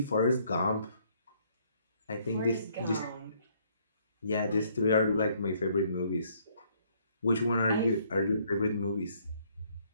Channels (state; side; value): inverted; both; correlation -0.66